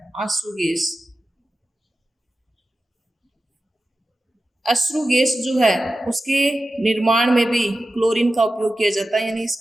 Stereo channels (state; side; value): normal; both; correlation 0.93